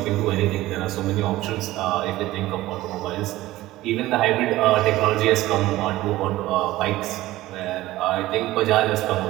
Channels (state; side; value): quieter; left; 16.8 dB